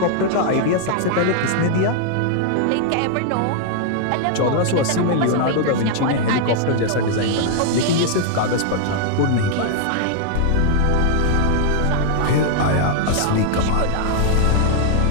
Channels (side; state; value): both; different; correlation 0.00